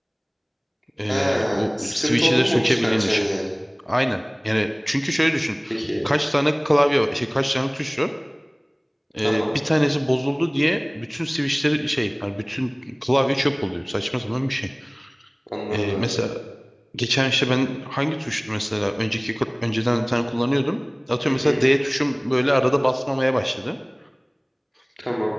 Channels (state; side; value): identical; both; correlation 1.00